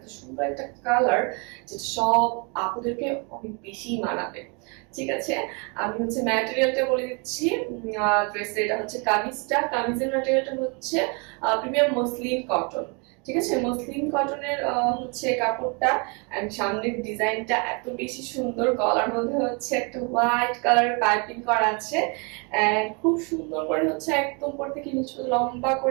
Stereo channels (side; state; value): left; quieter; 33.6 dB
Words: সুন্দর একটা কালার, যেটা সব আপুদেরকে অনেক বেশি মানাবে। ঠিক আছে, আমি হচ্ছে ম্যাটেরিয়ালটা বলে দিচ্ছি। ড্রেসের এটা হচ্ছে কামিজের ম্যাটেরিয়ালটা হচ্ছে প্রিমিয়াম মসলিন কটন। ঠিক আছে, মসলিন কটনের হচ্ছে কাপড়টা। এন্ড সামনের ডিজাইনটা এত বেশি সুন্দর, গলার মধ্যে হচ্ছে একটা হোয়াইট কালারের পাইপিং করা আছে। এন্ড খুব সুন্দর করে হচ্ছে একদম উপর থেকে নিচে লম্বা